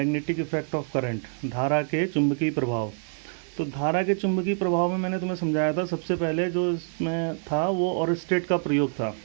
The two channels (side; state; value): left; silent; 61 dB below the other